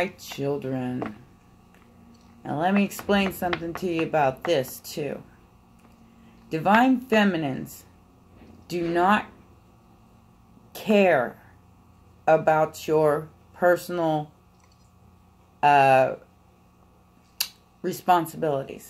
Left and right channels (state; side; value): identical; both; correlation 1.00